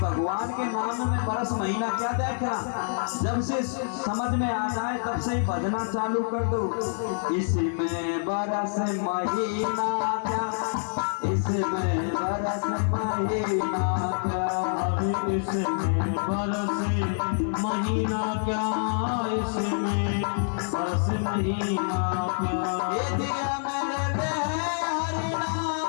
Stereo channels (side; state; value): right; silent; 60 dB below the other